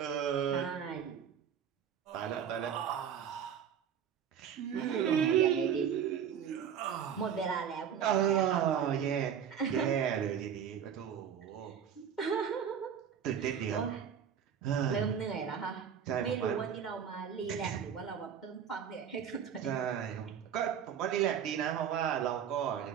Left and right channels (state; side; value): quieter; left; 8.2 dB